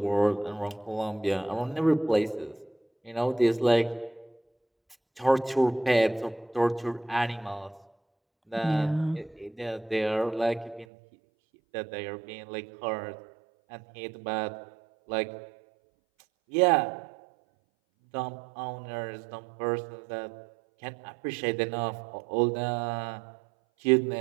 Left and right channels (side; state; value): left; drops out; at 10.9 s